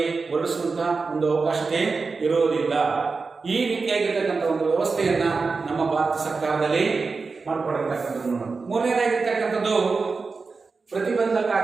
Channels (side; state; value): left; quieter; 4.4 dB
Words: ಹೊರಡಿಸುವಂತಹ ಒಂದು ಅವಕಾಶತೆ ಇರುವುದಿಲ್ಲ. ಈ ರೀತಿಯಾಗಿರ್ತಕ್ಕಂಥ ಒಂದು ವ್ಯವಸ್ಥೆಯನ್ನ ನಮ್ಮ ಭಾರತ ಸರ್ಕಾರದಲ್ಲಿ ಮಾಡಿಕೊಡಿರ್ತಕ್ಕಂಥದ್ದು. ಮೂರನೇದಾಗಿರ್ತಕ್ಕಂಥದ್ದು